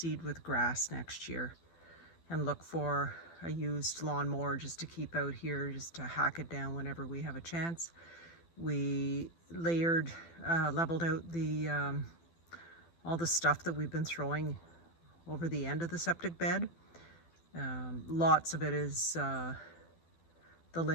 with grass next year and look for a used lawnmower just to keep out here, just to hack it down whenever we have a chance. We layered, leveled out the all the stuff that we've been throwing over the end of the septic bed. Lots of it is the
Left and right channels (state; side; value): late; right; 12 ms